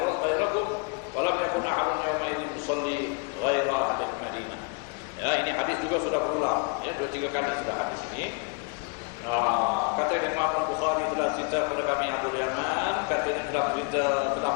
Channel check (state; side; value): quieter; right; 35.7 dB